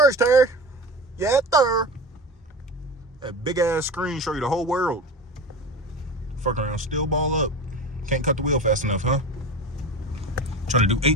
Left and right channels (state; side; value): normal; both; correlation 0.30